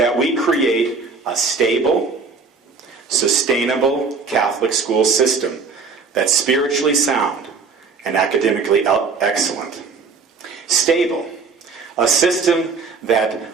we create a stable, sustainable Catholic school system that's spiritually sound and academically excellent. Stable, a system that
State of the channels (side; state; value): left; quieter; 4.8 dB